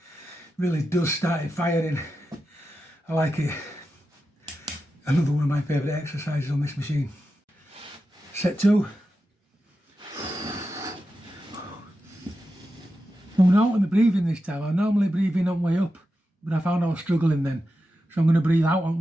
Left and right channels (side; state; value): both; normal; correlation 0.90